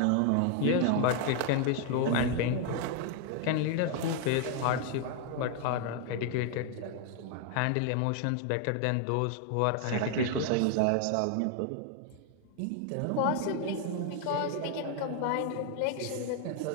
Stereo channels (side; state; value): both; different; correlation 0.00